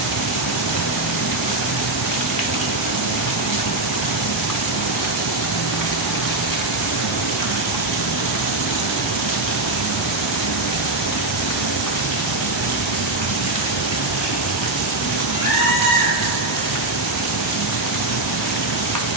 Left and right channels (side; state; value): left; quieter; 3.0 dB